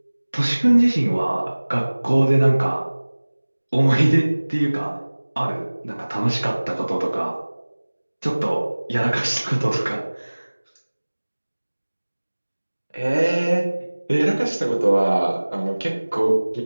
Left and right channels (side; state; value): both; inverted; correlation -1.00